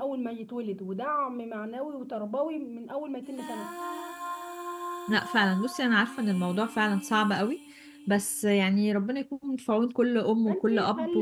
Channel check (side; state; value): both; identical; correlation 1.00